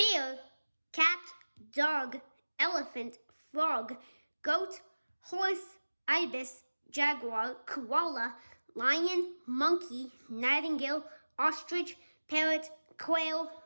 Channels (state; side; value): inverted; both; correlation -1.00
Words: cat, dog, elephant, frog, goat, horse, ibis, jaguar, koala, lion, monkey, nightingale, ostrich, parrot, quail,